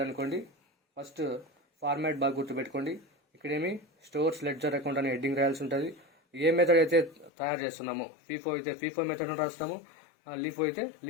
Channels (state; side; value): drops out; right; at 7.3 s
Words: అనుకోండి, ఫస్ట్ ఫార్మాట్ బాగా గుర్తుపెట్టుకోండి. ఇక్కడేమి స్టోర్స్ లెడ్జర్ అకౌంట్ అనే హెడ్డింగ్ రాయాల్సి ఉంటుంది. ఏ మెథడ్ అయితే తయారు చేస్తున్నామో, ఫీఫో అయితే ఫీఫో మెథడ్ అని రాస్తాము, లీఫో అయితే